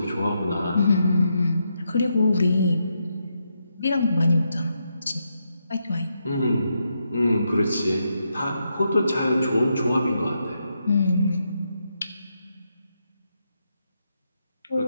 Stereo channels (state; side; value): inverted; both; correlation -0.82